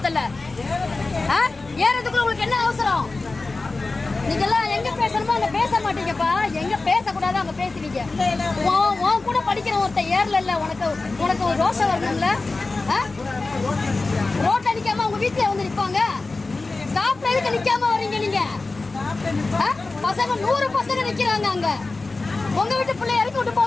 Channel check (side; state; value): right; quieter; 3.5 dB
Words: ஏறதுக்குள்ள உங்களுக்கு என்ன அவசரம்? நீங்க எல்லாம் எங்க பேசணுமோ அங்க பேச மாட்டீங்கப்பா. எங்க பேசக்கூடாது அங்க பேசுவீங்க. உன் கூட படிக்கிற ஒருத்த ஏறல, உனக்கு ஒரு ரோஷம் வரணும்ல. ரோட்ல நிக்காம உங்க வீட்டுல வந்து நிப்பாங்க. ஸ்டாப்ல எதுக்கு நிக்காம வர்றீங்க நீங்க? பசங்க 100 பசங்க நிக்கிறாங்க அங்க. உங்க வீட்டு பிள்ளை இறக்கி விட்டு